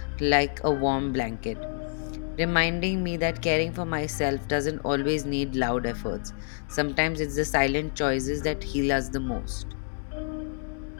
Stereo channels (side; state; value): right; silent; digital silence